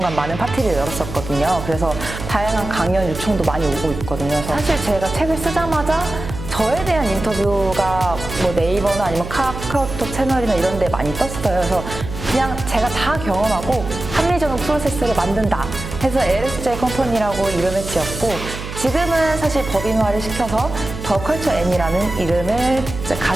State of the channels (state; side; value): noise; right; hum, 9 dB below the sound